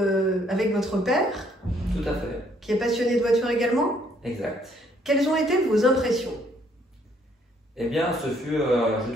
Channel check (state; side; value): normal; both; correlation 0.66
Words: avec votre père, Tout à fait, qui est passionné de voiture également. exact. Quelles ont été vos impressions? Eh bien, ce fut, je